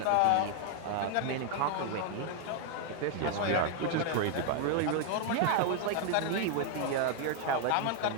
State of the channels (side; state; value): both; different; correlation 0.00